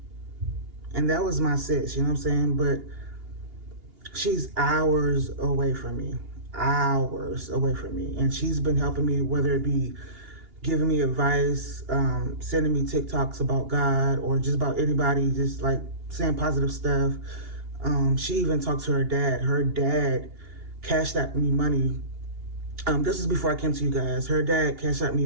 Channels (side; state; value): left; late; 2.8 ms